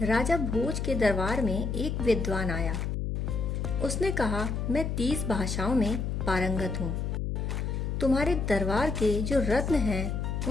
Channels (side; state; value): left; noise; hum, 2 dB below the sound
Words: राजा भोज के दरबार में एक विद्वान आया। उसने कहा, मैं 30 भाषाओं में पारंगत हूँ। तुम्हारे दरबार के जो रत्न हैं